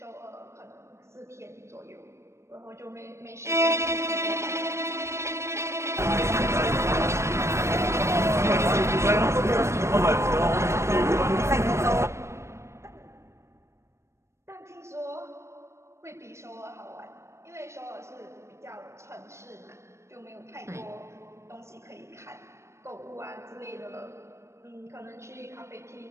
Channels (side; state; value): left; late; 0.13 ms